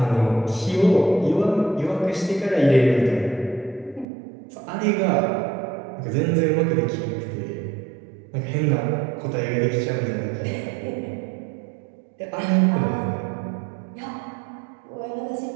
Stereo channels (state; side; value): drops out; left; at 4.0 s